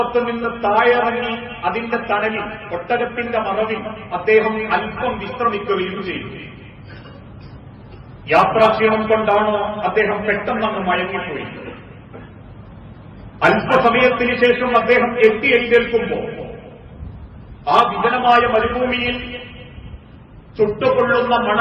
നിന്ന് താഴെറങ്ങി അതിന്റെ തണലിൽ, ഒട്ടകത്തിന്റെ മറവിൽ അദ്ദേഹം അല്പം വിശ്രമിക്കുകയും ചെയ്തു. യാത്രാക്ഷീണം കൊണ്ടാണോ അദ്ദേഹം പെട്ടെന്നങ്ങ് മയങ്ങിപ്പോയി. അല്പസമയത്തിന് ശേഷം അദ്ദേഹം എഴുന്നേൽക്കുമ്പോൾ ആ വിജനമായ മരുഭൂമിയിൽ ചുട്ടുകൊള്ളുന്ന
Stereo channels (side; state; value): both; identical; correlation 1.00